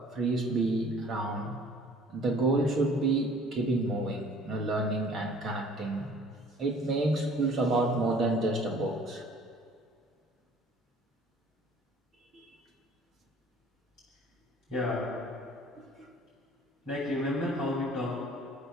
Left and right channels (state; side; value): normal; both; correlation 0.52